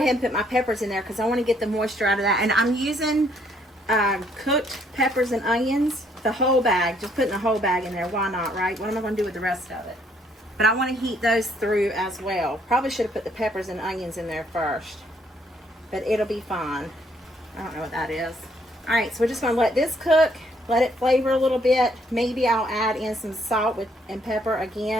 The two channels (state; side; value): normal; both; correlation 0.68